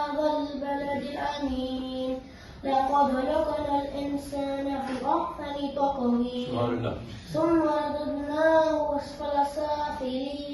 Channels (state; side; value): identical; both; correlation 1.00